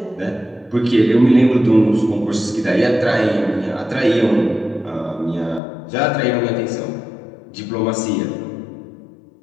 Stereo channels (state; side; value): drops out; right; at 5.6 s